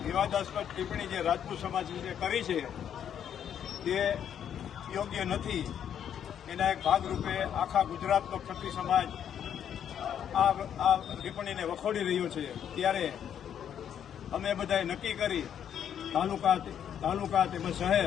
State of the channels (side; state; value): right; quieter; 9.1 dB